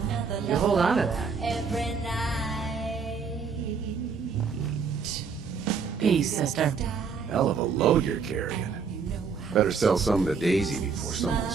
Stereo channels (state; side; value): quieter; left; 5.6 dB